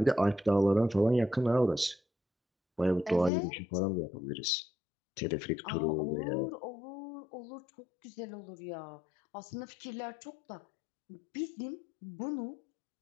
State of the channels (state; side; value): drops out; right; at 3.3 s